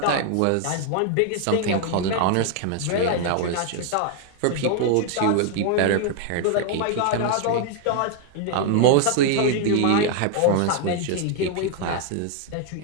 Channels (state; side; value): different; both; correlation 0.00